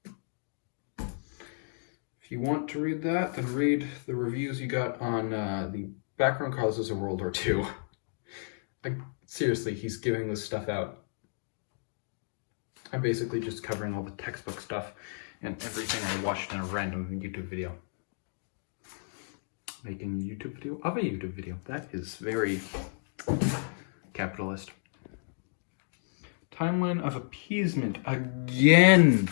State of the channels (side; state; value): right; silent; digital silence